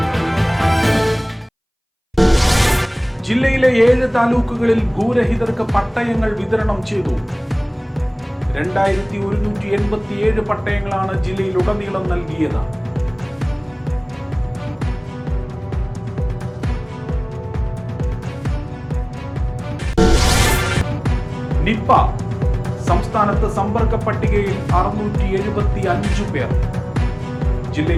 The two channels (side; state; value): both; identical; correlation 1.00